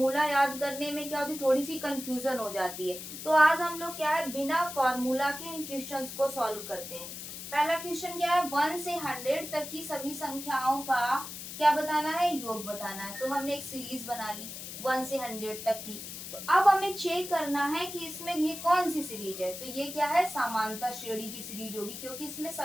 याद करने में क्या होती, थोड़ी सी कंफ्यूजन हो जाती है। तो आज हम लोग क्या है, बिना फार्मूला के इन क्वेश्चंस को सॉल्व करते हैं। पहला क्वेश्चन क्या है, 1 से 100 तक की सभी संख्याओं का क्या बताना है, योग बताना है। तो हमने एक सीरीज बना ली 1 से 100 तक की। तो अब हमें चेक करना है कि इसमें ये कौन सी सीरीज है। तो ये क्या है, समांतर श्रेणी की सीरीज होगी, क्योंकि इसमें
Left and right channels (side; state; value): left; noise; hiss, 9 dB below the sound